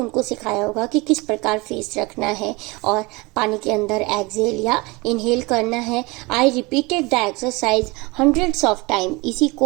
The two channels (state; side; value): quieter; left; 25.0 dB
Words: सिखाया होगा कि किस प्रकार फेस रखना है और पानी के अंदर एक्सेल या इनहेल करना है, I repeated the exercise hundreds of time, इसी